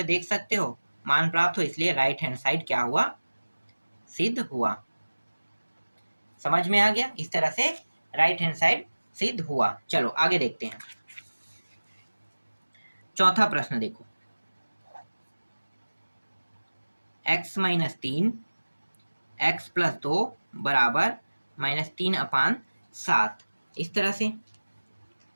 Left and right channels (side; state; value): both; inverted; correlation -1.00